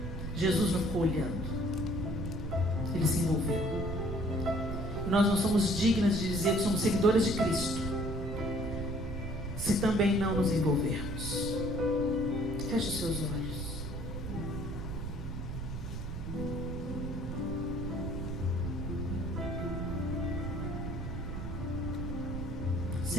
Jesus não ficou olhando, ele se envolveu. E nós não somos dignas de dizer que somos seguidores de Cristo se também não nos envolvermos. Feche os seus olhos.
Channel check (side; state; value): right; noise; rumble, 5 dB below the sound